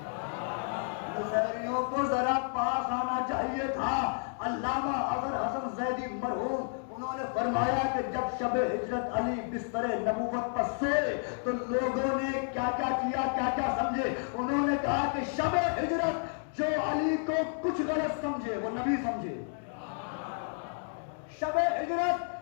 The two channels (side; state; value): right; silent; 57 dB below the other